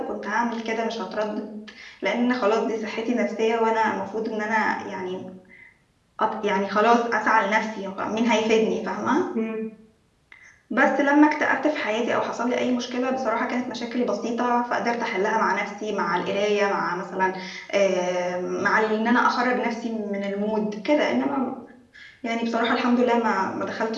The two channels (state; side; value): identical; both; correlation 1.00